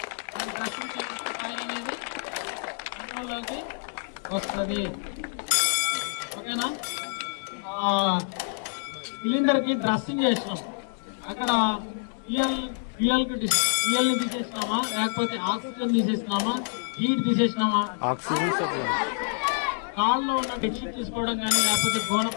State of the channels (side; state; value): right; silent; digital silence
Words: దాన్ని డ్రెస్సింగ్ చేస్తే ఫైర్ అనేది కంట్రోల్లోకి వస్తుంది. ఓకేనా? సిలిండర్కి డ్రెస్సింగ్ చేసినాం, అక్కడ ఫ్యూయల్ని తీసేసినామా లేకపోతే ఆక్సిజన్ తీసేసినామా, హీట్ తీసేసినామా, ఆక్సిజన్ కాళ్ళలో ఉన్న బెడ్షీట్ తీసుకోవడం కానీ లేకపోతే